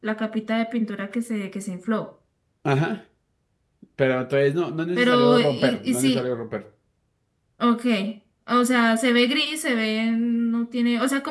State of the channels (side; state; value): both; identical; correlation 1.00